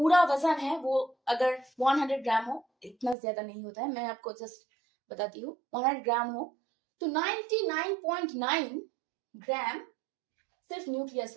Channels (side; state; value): left; drops out; at 3.2 s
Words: वजन है वो अगर 100 ग्राम हो, इतना ज्यादा नहीं होता है, मैं आपको जस्ट बताती हूँ, 100 ग्राम हो तो 99.9 ग्राम सिर्फ